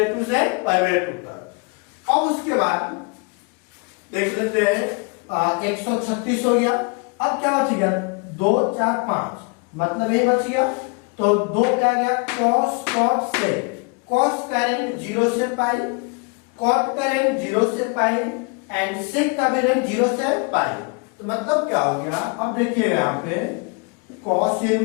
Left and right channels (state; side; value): quieter; right; 32.6 dB